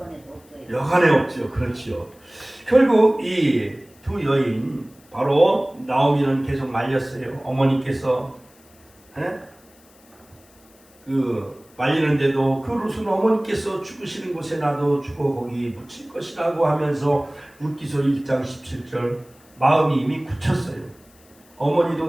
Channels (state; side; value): noise; left; hiss, 29 dB below the sound